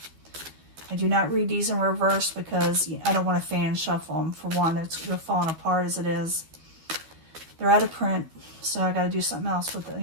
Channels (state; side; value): late; left; 12 ms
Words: I do not read these in reverse because I don't want to fan shuffle them. For one, they're falling apart as it is. They're out of print, so I got to do something else with it,